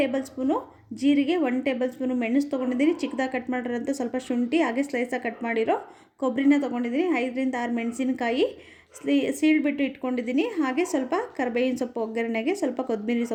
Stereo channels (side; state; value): both; identical; correlation 1.00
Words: ಸ್ಪೂನು ಜೀರಿಗೆ, 1 ಟೇಬಲ್ ಸ್ಪೂನು ಮೆಣಸು ತೊಗೊಂಡಿದ್ದೀನಿ, ಚಿಕ್ಕದಾಗಿ ಕಟ್ ಮಾಡಿರೋಂಥ ಸ್ವಲ್ಪ ಶುಂಠಿ, ಹಾಗೆ ಸ್ಲೈಸಾಗಿ ಕಟ್ ಮಾಡಿರೋ ಕೊಬ್ಬರಿನ ತೊಗೊಂಡಿದ್ದೀನಿ, 5 ರಿಂದ 6 ಮೆಣಸಿನಕಾಯಿ ಸೀಳ್ಬಿಟ್ಟು ಇಟ್ಕೊಂಡಿದ್ದೀನಿ, ಹಾಗೆ ಸ್ವಲ್ಪ ಕರಿಬೇವಿನ ಸೊಪ್ಪು ಒಗ್ಗರಣೆಗೆ ಸ್ವಲ್ಪ ಕೊತ್ತಂಬರಿ